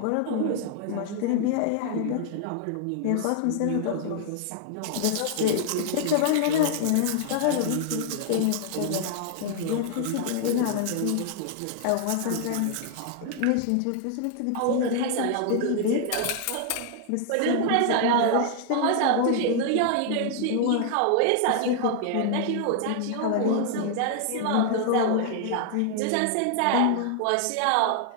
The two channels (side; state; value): both; different; correlation 0.00